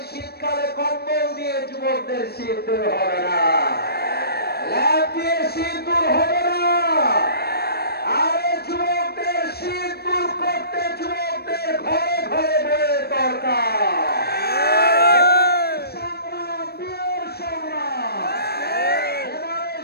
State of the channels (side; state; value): right; late; 0.46 ms